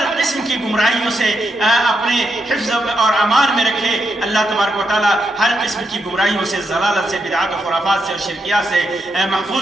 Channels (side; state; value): both; normal; correlation 0.82